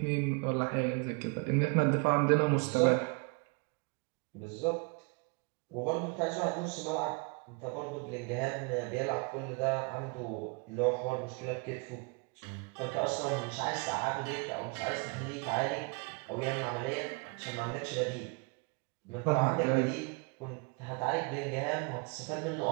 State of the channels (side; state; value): left; quieter; 33.4 dB